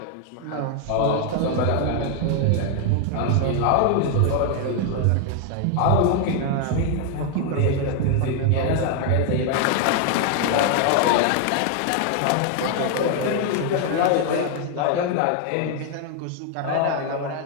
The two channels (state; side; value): different; both; correlation 0.00